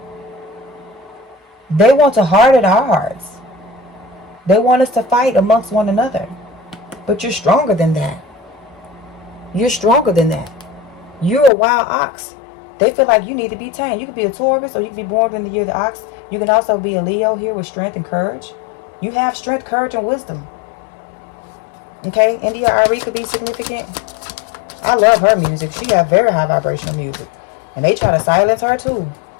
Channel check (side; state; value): right; drops out; at 11.5 s